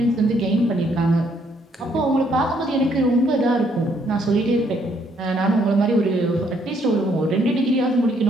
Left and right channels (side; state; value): both; normal; correlation 0.69